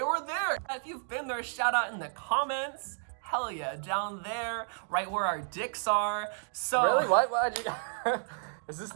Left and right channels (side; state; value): left; silent; digital silence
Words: were there. If you've been there, shout out in the comments. Hell yeah, down there, right where our dicks are. So Really? Why'd you... Is this